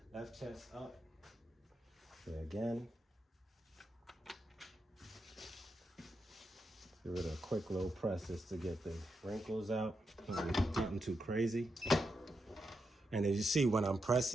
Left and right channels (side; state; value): both; normal; correlation 0.85